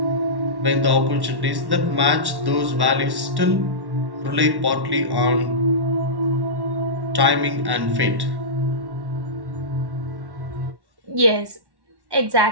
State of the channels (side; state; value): left; late; 1.1 ms